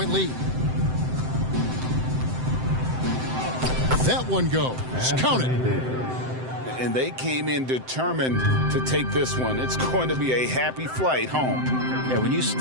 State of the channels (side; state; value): left; late; 7.8 ms